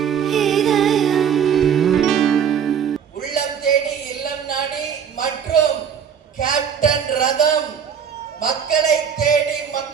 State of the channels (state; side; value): quieter; left; 7.7 dB